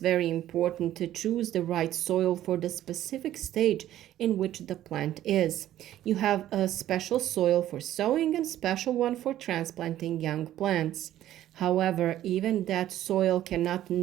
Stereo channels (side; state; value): left; quieter; 12.9 dB